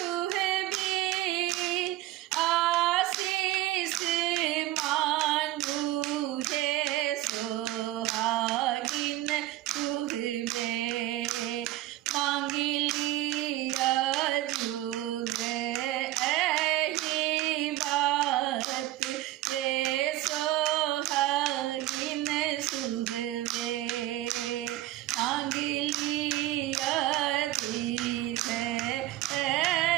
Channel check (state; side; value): quieter; left; 15.5 dB